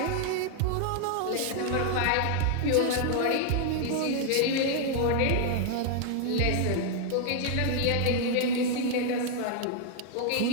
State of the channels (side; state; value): both; different; correlation 0.00